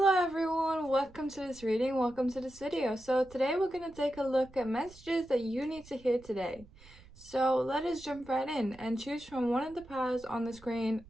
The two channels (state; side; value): noise; right; rumble, 23 dB below the sound